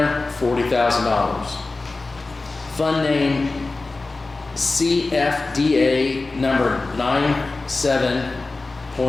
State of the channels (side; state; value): right; quieter; 3.5 dB